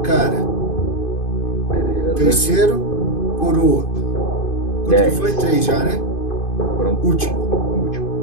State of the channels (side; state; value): right; late; 2.5 ms